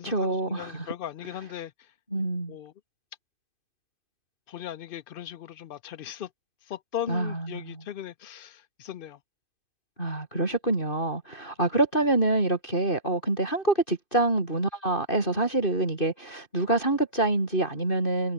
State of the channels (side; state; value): right; late; 2.5 ms